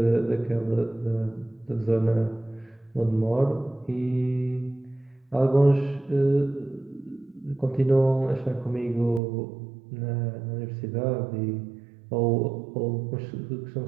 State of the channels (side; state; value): left; drops out; at 9.2 s